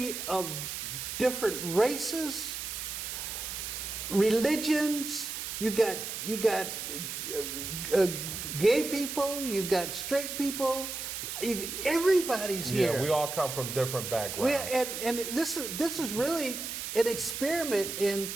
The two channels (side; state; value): right; noise; hiss, 5 dB below the sound